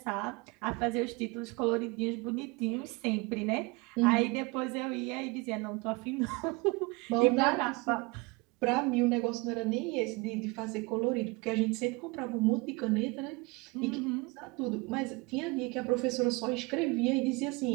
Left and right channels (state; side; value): quieter; left; 26.1 dB